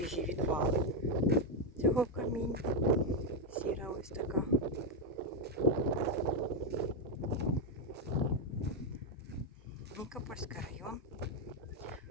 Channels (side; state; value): both; normal; correlation 0.03